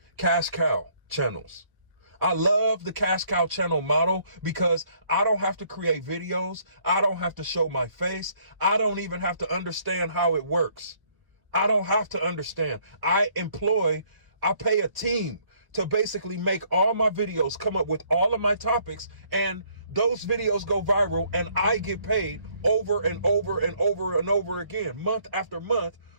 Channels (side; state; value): left; late; 1.1 ms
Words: cash cow channels. I love the cash cow channel model because I don't have to create videos. I don't have to show my face. I don't even have to understand how it works. I don't have to understand. I pay a team to basically make all my videos, come up with all of my topics, and those videos go viral, and I get paid over and over and over and over again, month after month,